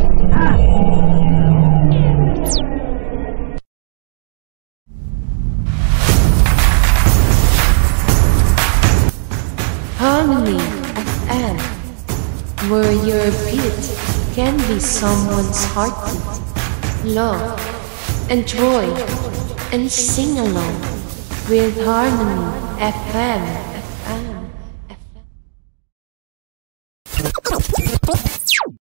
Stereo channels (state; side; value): silent; left; digital silence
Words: Harmony FM, where your beat can be someone's heartbeat. Love, enjoy, and sing along with Harmony FM.